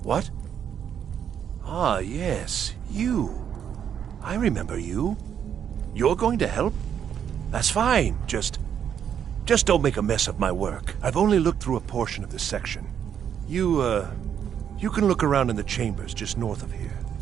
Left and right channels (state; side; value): quieter; left; 8.7 dB